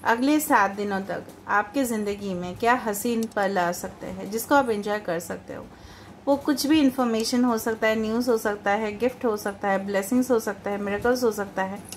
अगले 7 दिनों तक आपके ज़िंदगी में क्या हसीन पल आ सकते हैं जिसको आप एंजॉय कर सकते हो। वो कुछ भी इंफॉर्मेशन हो सकता है, न्यूज़ हो सकता है, गिफ्ट हो सकता है, ब्लेसिंग्स हो सकता है, मिरेकल्स हो सकता है,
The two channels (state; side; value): identical; both; correlation 1.00